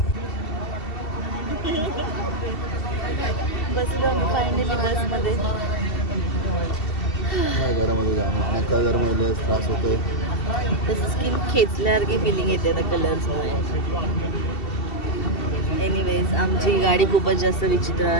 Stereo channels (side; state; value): right; late; 2.7 ms